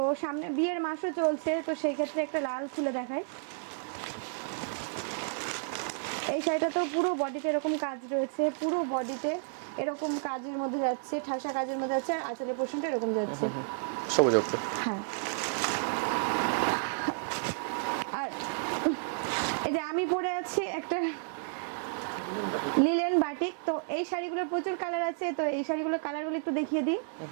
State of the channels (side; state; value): left; silent; 57 dB below the other